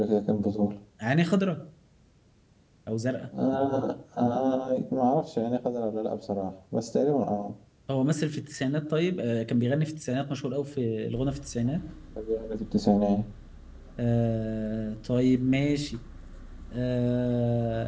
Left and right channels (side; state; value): both; identical; correlation 1.00